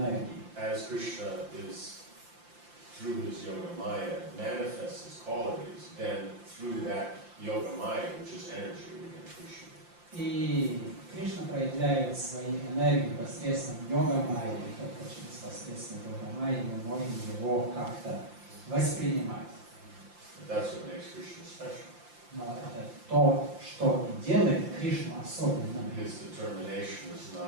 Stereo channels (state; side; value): late; left; 5.8 ms